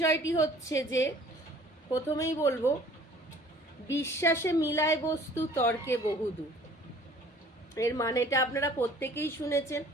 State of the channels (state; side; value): normal; both; correlation 0.52